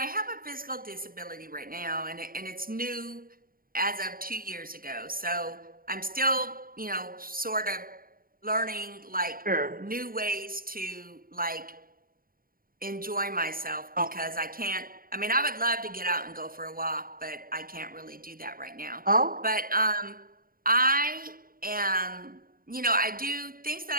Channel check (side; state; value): left; late; 0.42 ms